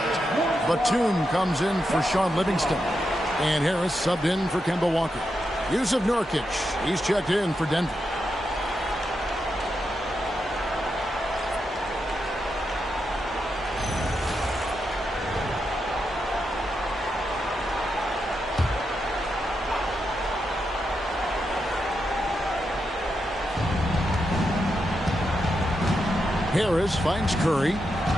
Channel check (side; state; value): both; normal; correlation 0.85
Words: Batum comes in for Sean Livingston. And Harris subbed in for Kemba Walker. Yusuf Nurkic, he's checked in for Denver. Harris finds Curry.